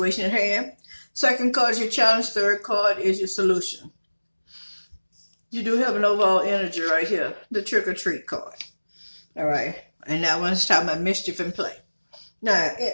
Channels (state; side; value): inverted; both; correlation -1.00